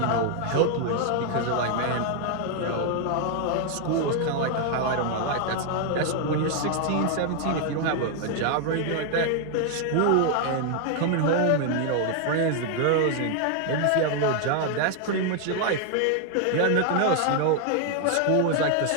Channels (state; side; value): different; both; correlation 0.00